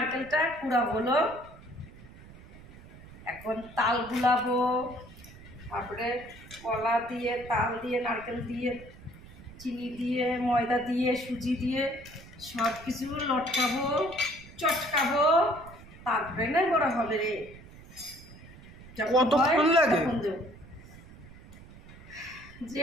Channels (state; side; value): noise; right; rumble, 19 dB below the sound